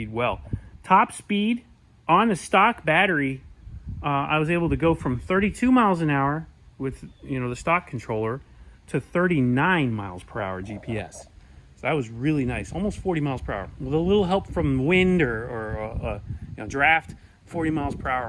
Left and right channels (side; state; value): both; identical; correlation 1.00